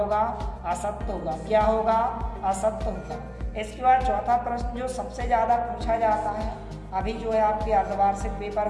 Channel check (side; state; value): both; identical; correlation 1.00